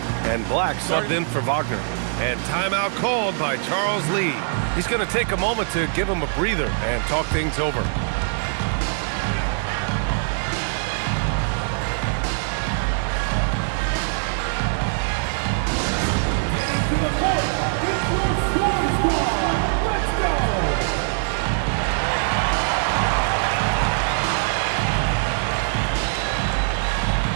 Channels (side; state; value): left; silent; digital silence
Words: And Black subbed in for Wagner. And timeout called by Charles Lee. He's going to take a moment to give him a breather and talk things over.